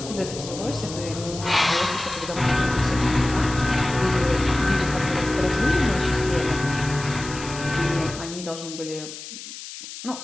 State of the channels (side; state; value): left; noise; hiss, 11 dB below the sound